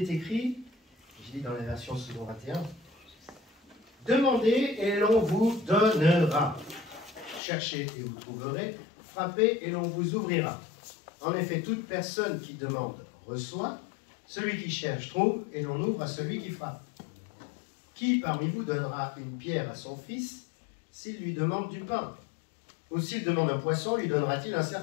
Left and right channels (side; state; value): right; drops out; at 7.4 s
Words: est écrit, je lis dans la version second 21, « Demandez et l'on vous donnera. Cherchez et vous trouverez. Frappez et l'on vous ouvrira. En effet, toute personne qui demande reçoit. Celui qui cherche trouve et l'on ouvre à celui qui frappe. Qui parmi vous donnera une pierre à son fils s'il lui demande du pain? Ou s'il demande un poisson, lui donnera-t-il un